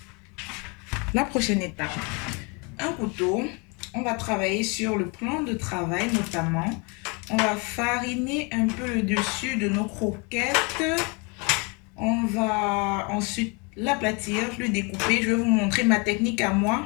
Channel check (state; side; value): quieter; right; 31.4 dB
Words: La prochaine étape, un couteau. On va travailler sur le plan de travail notamment. On va fariner un peu le dessus de nos croquettes. On va ensuite l'aplatir, le découper. Je vais vous montrer ma technique à